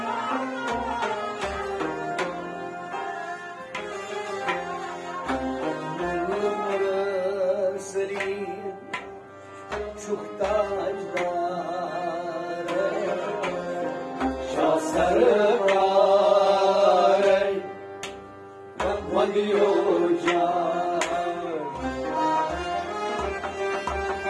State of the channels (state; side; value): identical; both; correlation 1.00